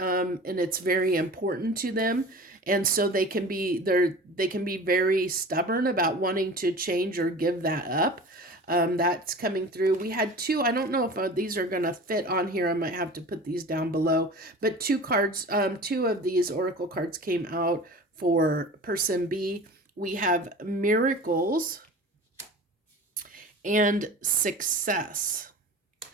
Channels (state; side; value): normal; both; correlation 0.37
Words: it's very important to them. And so they can be very stubborn about wanting to change or give that up. That's coming through. We had two, I don't know if these are going to fit on here. I might have to put these down below. But two of these oracle cards came out for person B. We have miracles and success.